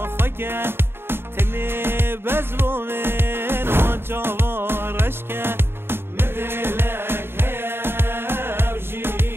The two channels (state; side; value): late; left; 0.11 ms